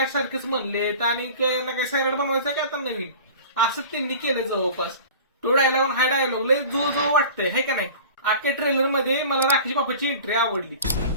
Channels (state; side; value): inverted; both; correlation -0.39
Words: म्हणलेत, आणि काय ना काय सैराट बनवायचं काय आता नवीन, असंच त्यांनी केलं जवळपास. तो डायलॉग हा डायलॉग लय जो वाटतंय, है का नाही? अख्ख्या ट्रेलर मध्ये मला राकेश बापाची एंट्री आवडली.